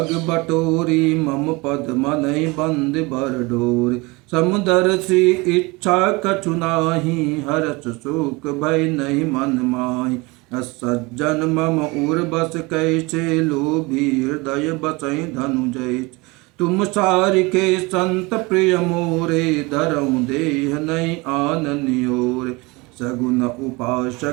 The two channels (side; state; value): left; quieter; 25.0 dB